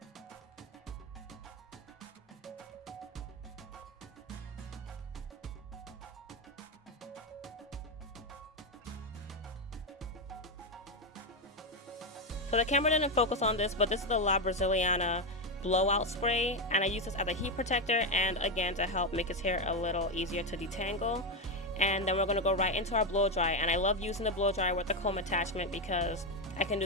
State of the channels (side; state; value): both; normal; correlation 0.09